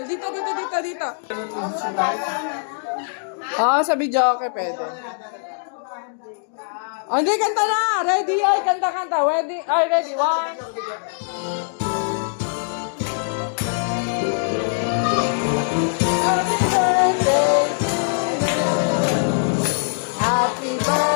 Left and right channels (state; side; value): silent; right; digital silence